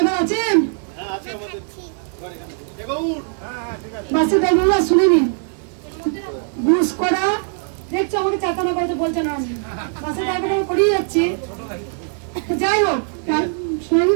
আছেন? বাসের ড্রাইভার শুনে নিন। ঘুষ করা দেখছো, আমাকে চাতানা করতে বলছে না, বাসের ড্রাইভার আমি করিয়ে যাচ্ছি। যাই হোক শুনে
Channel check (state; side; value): silent; left; 57 dB below the other